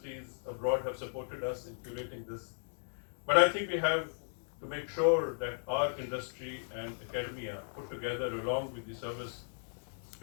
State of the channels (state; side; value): silent; right; digital silence